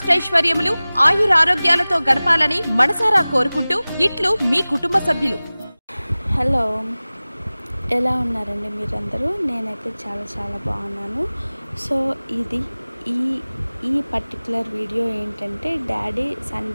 ఆయురారోగ్యాలతో గడపాలని మనసారా కోరుకుంటూ ఇట్లు మీ కుటుంబ సభ్యులు. హలో, ఎలా ఉన్నారండి మీరందరూ? నేనైతే చాలా బాగున్నాను. సో ఇది ఈ పర్టికులర్ వీడియో ఏంటంటే, డాడీ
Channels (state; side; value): inverted; both; correlation -0.99